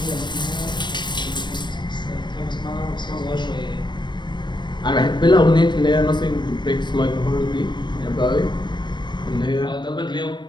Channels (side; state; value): right; late; 0.22 ms